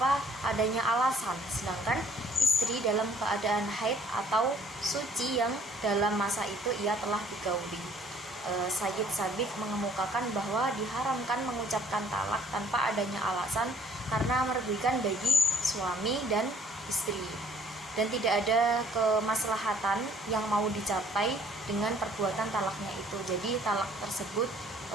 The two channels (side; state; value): both; normal; correlation 0.59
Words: adanya alasan, sedangkan istri dalam keadaan haid atau suci yang dalam masa itu ia telah digauli. Sayyid Sabiq mengemukakan bahwa diharamkan mengucapkan talak tanpa adanya alasan karena merugikan bagi suami dan istri, dan tidak ada kemaslahatan yang mau dicapai dengan perbuatan talaknya itu. Jadi talak tersebut